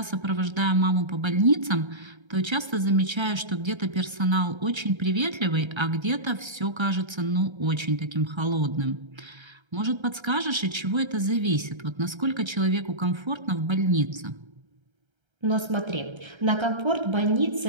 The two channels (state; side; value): late; left; 1.3 ms